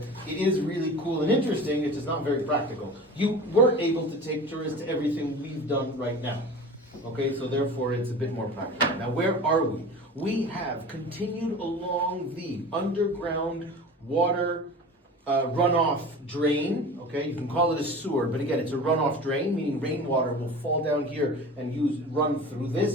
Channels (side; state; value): both; normal; correlation 0.36